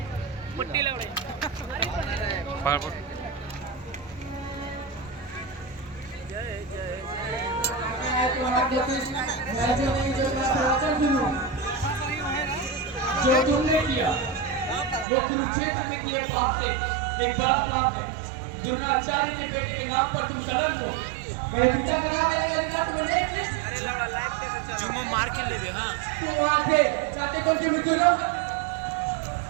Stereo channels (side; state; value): left; drops out; at 15.1 s